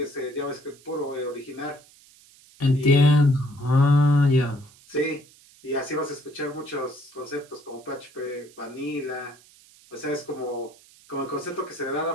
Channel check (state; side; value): noise; right; hiss, 26 dB below the sound